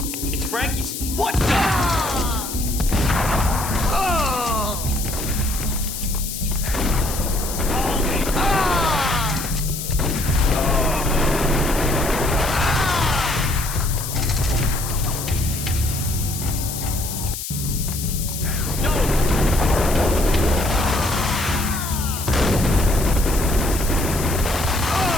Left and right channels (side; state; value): left; noise; hiss, 7 dB below the sound